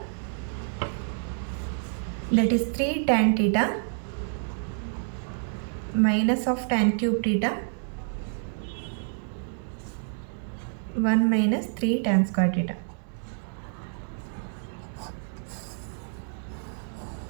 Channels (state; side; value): silent; left; digital silence